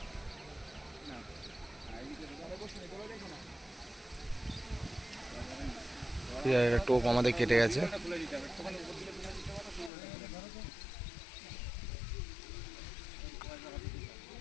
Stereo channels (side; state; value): right; drops out; at 9.9 s